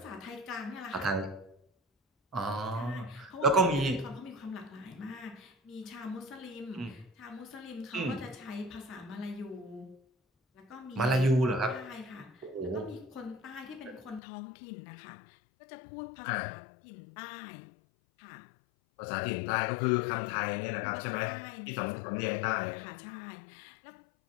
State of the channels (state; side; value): drops out; right; at 14.2 s